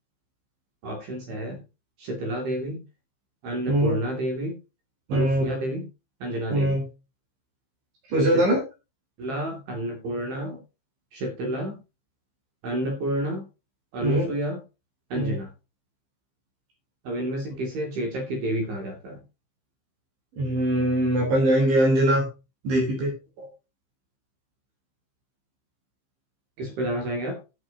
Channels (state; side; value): late; left; 15 ms